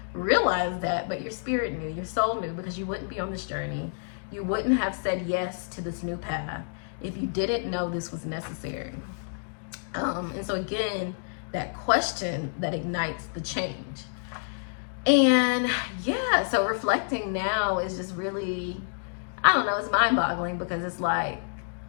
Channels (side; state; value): right; silent; digital silence